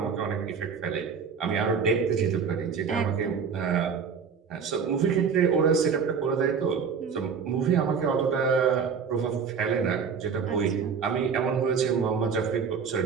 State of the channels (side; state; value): left; quieter; 6.2 dB